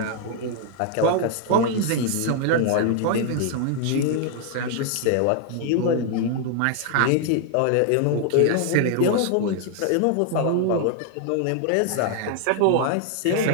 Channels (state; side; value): different; both; correlation 0.00